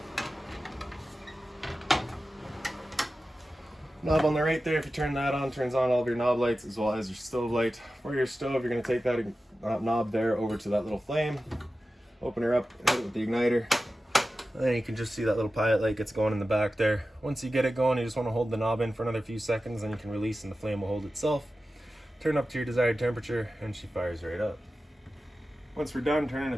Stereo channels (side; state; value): both; normal; correlation 0.94